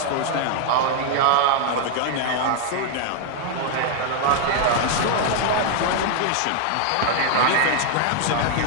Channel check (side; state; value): both; different; correlation 0.00